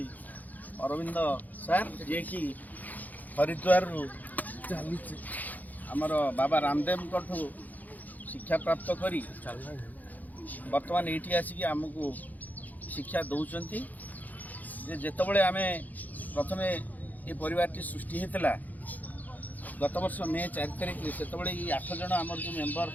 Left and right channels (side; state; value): right; late; 0.081 ms